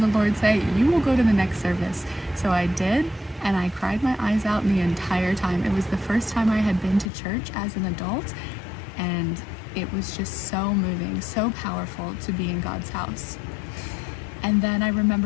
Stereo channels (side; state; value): right; drops out; at 7.1 s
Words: the Lord say, "You will go to the next service." So I did, and I cried my eyes out the entire time. It was the first time I had been to church as an adult, and it was just so moving, so powerful to be in God's house. And then I